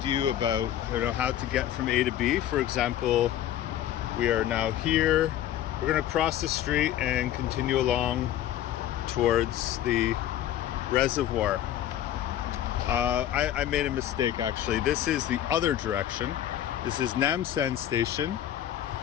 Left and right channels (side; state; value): right; quieter; 11.7 dB